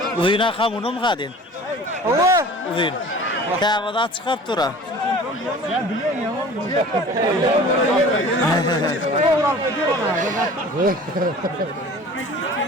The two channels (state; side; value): normal; both; correlation 0.43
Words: Uyuna kamunu mu kadın? Allah! Uyun. Kavada çıkıp dura.